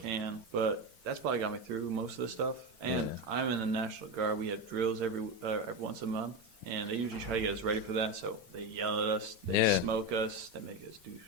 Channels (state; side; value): late; left; 6.7 ms